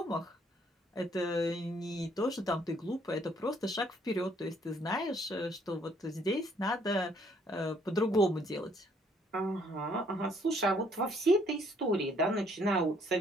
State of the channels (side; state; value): both; normal; correlation 0.65